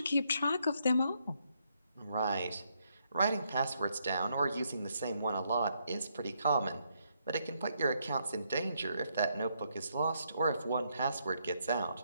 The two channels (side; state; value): both; inverted; correlation -0.75